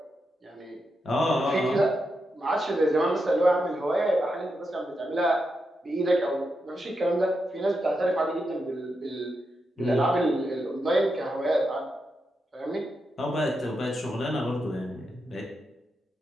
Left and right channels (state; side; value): normal; both; correlation 0.86